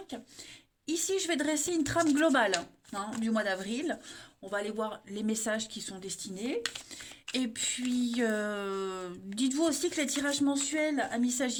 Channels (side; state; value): both; identical; correlation 1.00